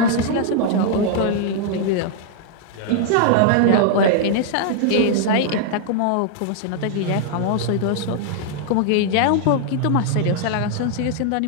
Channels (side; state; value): both; different; correlation -0.01